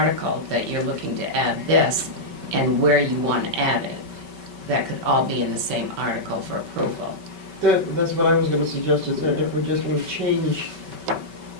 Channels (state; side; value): late; left; 5.2 ms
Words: that you're looking to add this, and where you want to add it. That could all be in the same article for approval. That's what I was gonna suggest, is that if we're just gonna change